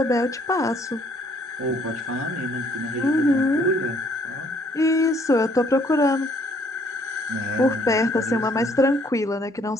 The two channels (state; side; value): normal; both; correlation 0.64